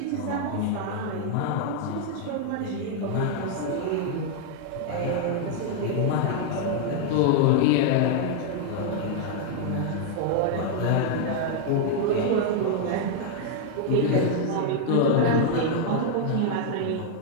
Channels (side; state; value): both; different; correlation 0.00